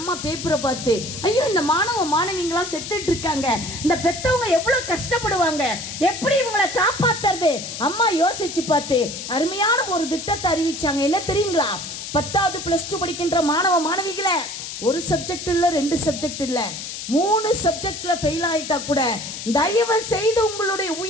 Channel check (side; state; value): left; noise; hiss, 8 dB below the sound